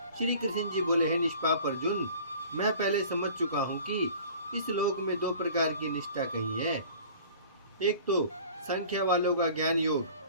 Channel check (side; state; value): both; inverted; correlation -0.46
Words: श्री कृष्ण जी बोले, हे निष्पाप अर्जुन, मैं पहले समझ चुका हूँ कि इस लोक में दो प्रकार की निष्ठा कही है। एक तो संख्या वालों का ज्ञान